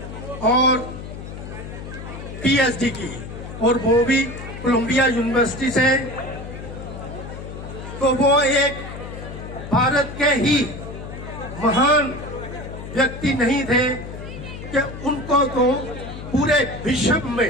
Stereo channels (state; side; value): noise; left; hum, 10 dB below the sound